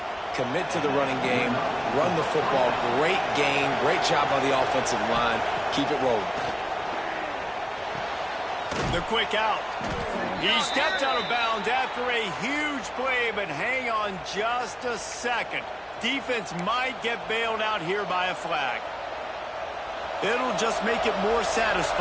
Commit to the running game, run the football. Great gain, great job by the offensive line. Keep it rolling. The quick out. He stepped out of bounds after a huge play, but hang on just a second. Defense might get bailed out here by a flag. It'll just make it more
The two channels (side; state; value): both; identical; correlation 1.00